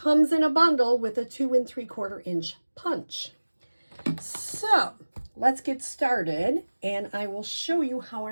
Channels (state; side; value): inverted; both; correlation -1.00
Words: in a bundle with a 2 3/4 inch punch. So let's get started, and I will show you how